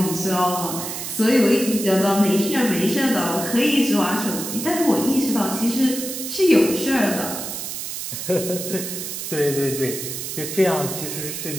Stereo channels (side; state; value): right; noise; hiss, 6 dB below the sound